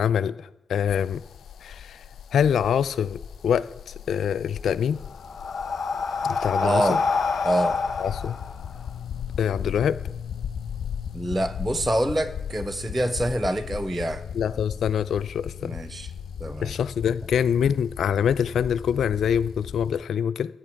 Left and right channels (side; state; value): right; quieter; 5.1 dB